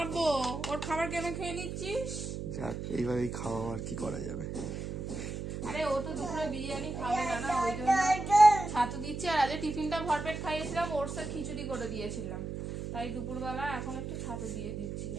ওর খাবার কেন খেয়ে নিচ্ছিস? যাক এইভাবেই খাওয়া, আর কি করা যাবে। আরে ও তো দুপুরে বিরিয়ানি খাবে না, না ওই জন্য ছাতু দিচ্ছে। আর আজ টিফিনটা ভরপেট খাইয়েছিলাম, ওটসের খিচুড়ি করে দিয়েছিলাম। তাই দুপুরবেলা এখন একটু ছাতু দিয়ে দিচ্ছি।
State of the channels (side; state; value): right; noise; hum, 5 dB below the sound